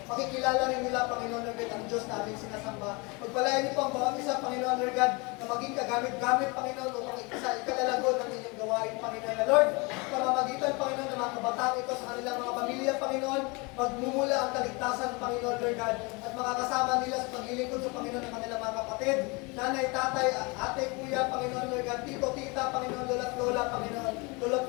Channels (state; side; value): quieter; right; 28.1 dB